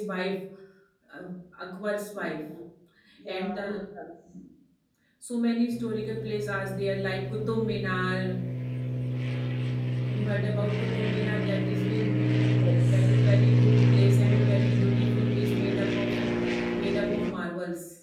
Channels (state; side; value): identical; both; correlation 1.00